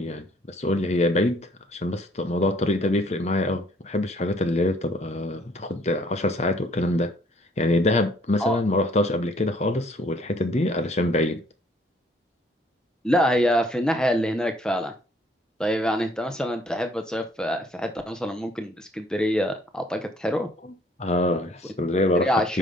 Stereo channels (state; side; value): normal; both; correlation 0.62